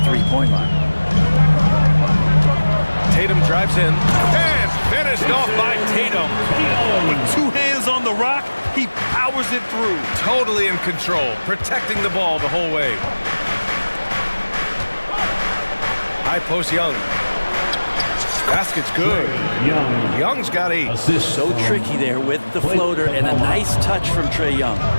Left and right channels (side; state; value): both; inverted; correlation -1.00